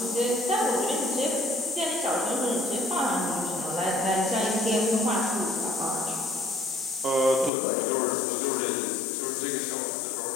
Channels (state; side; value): drops out; right; at 7.5 s